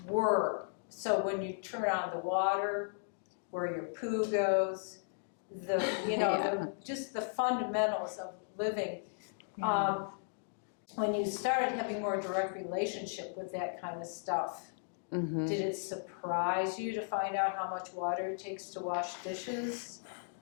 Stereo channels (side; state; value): right; silent; digital silence